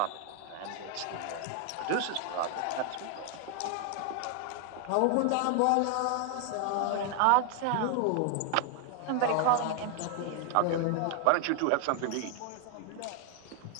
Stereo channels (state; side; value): different; both; correlation 0.00